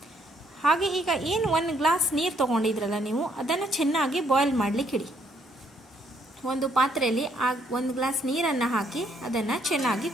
ಹಾಗೆ ಈಗ ಏನು 1 ಗ್ಲಾಸ್ ನೀರು ತಗೊಂಡಿದ್ರಲ್ಲ ನೀವು, ಅದನ್ನು ಚೆನ್ನಾಗಿ ಬಾಯ್ಲ್ ಮಾಡಲಿಕ್ಕೆ ಇಡಿ. ಒಂದು ಪಾತ್ರೆಯಲ್ಲಿ 1 ಗ್ಲಾಸ್ ನೀರನ್ನು ಹಾಕಿ ಅದನ್ನು ಚೆನ್ನಾಗಿ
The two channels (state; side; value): normal; both; correlation 0.70